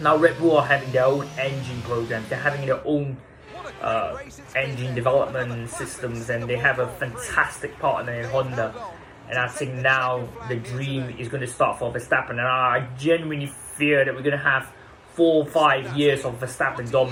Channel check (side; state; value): both; identical; correlation 1.00